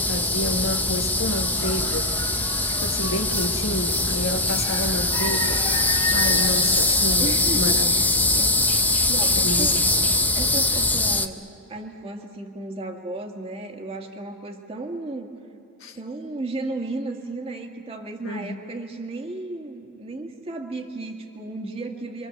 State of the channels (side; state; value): both; normal; correlation -0.01